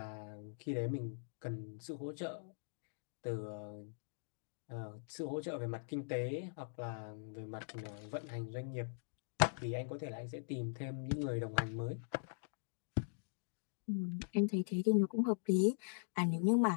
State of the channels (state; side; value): silent; right; digital silence